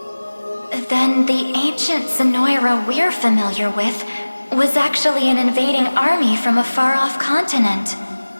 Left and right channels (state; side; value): inverted; both; correlation -1.00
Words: Then the ancient Zenoira we're familiar with was actually an invading army from a far-off continent.